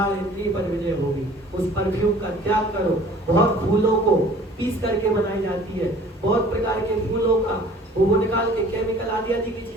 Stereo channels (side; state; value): both; normal; correlation 0.50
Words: इंद्रिय पर विजय होगी। उस परफ्यूम का त्याग करो। बहुत फूलों को पीस करके बनाई जाती है, बहुत प्रकार के फूलों का वो निकाल के केमिकल आदि की